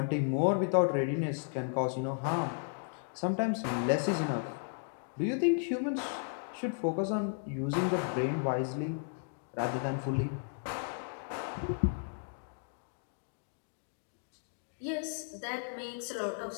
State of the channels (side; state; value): right; silent; digital silence